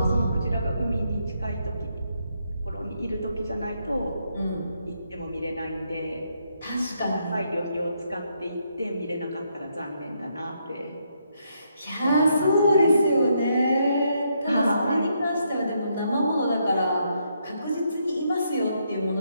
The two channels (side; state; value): both; inverted; correlation -0.76